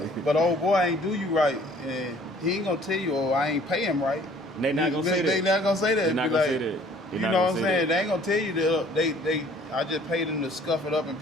But old boy ain't do you right, and he ain't gonna tell you, oh, I ain't pay him right. They not gonna say that. They not gonna say that. They not gonna say that. You know what I'm saying? They ain't gonna tell you that I just paid them to scuff it up and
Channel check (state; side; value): normal; both; correlation 0.55